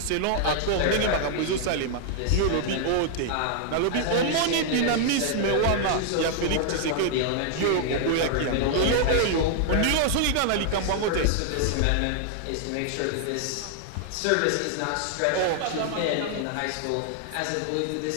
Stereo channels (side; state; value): both; different; correlation 0.00